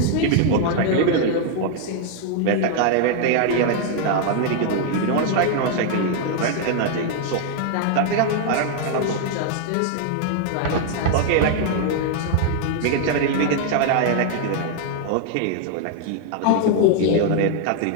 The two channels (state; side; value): different; both; correlation 0.00